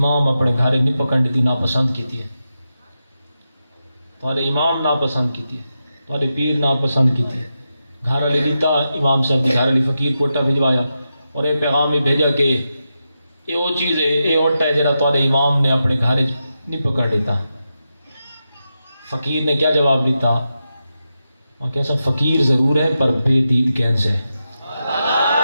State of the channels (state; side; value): inverted; both; correlation -0.88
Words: اپنے گھر نہیں پکڑ دی ناپسند کیتی ہے، تھوڑے امام ناپسند کیتی ہے، تھوڑے پیر ناپسند کیتی ہے۔ گھر والی لیتا امام صاحب کی گھر والی فقیر کو اٹا بھجوایا اور یہ پیغام ہی بھیجا کہ یہ وہ چیز ہے، یہ اٹا ہے جڑا تھوڑے امام نے اپنے گھر نہیں پکڑ لیتا۔ فقیر نے کیا جواب دیتا؟ اور کیسا فقیر ضرور ہے پر بے دید کینس ہے۔